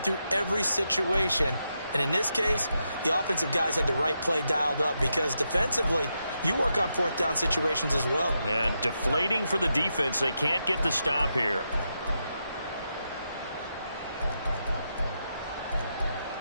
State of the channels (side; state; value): both; inverted; correlation -0.85